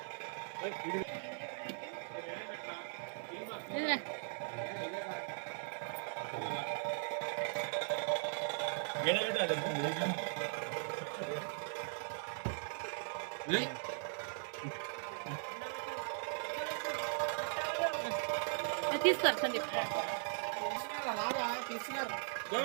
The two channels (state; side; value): silent; left; 52 dB below the other